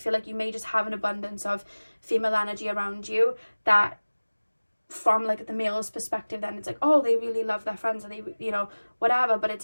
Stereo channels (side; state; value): both; inverted; correlation -1.00